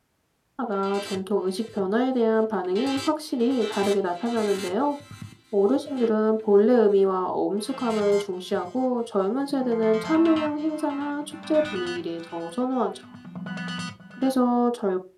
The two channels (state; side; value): identical; both; correlation 1.00